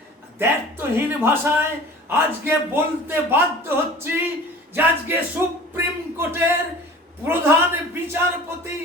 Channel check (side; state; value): both; normal; correlation 0.43